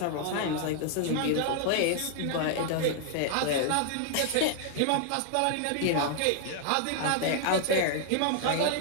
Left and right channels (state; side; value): different; both; correlation 0.00